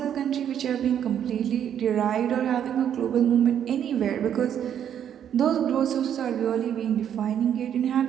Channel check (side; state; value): left; quieter; 9.4 dB